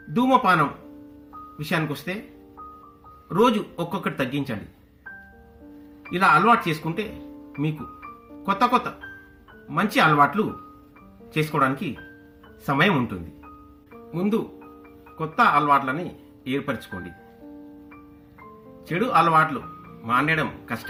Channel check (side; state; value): both; identical; correlation 1.00